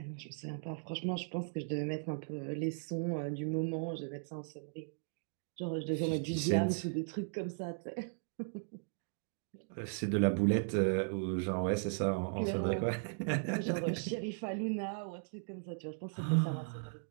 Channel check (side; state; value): left; silent; digital silence